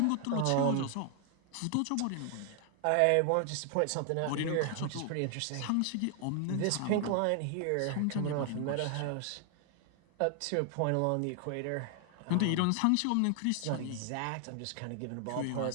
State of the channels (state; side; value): different; both; correlation 0.00